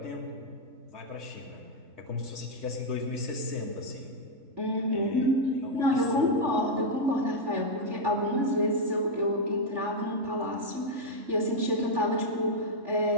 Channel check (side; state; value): left; late; 3.5 ms